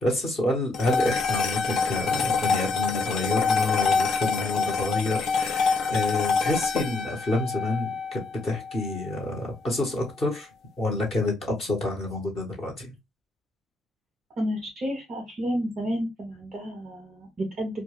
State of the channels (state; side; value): quieter; right; 3.1 dB